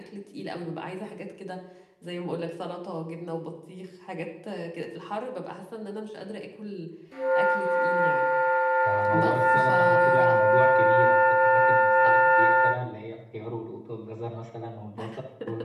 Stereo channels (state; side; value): identical; both; correlation 1.00